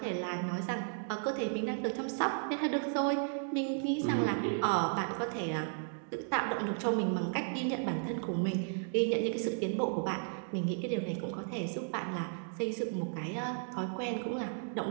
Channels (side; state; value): left; silent; 55 dB below the other